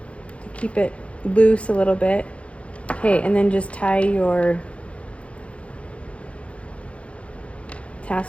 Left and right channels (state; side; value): late; right; 0.062 ms